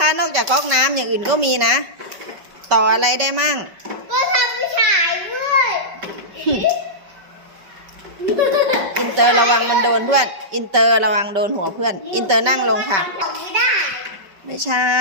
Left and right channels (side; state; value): left; late; 5.1 ms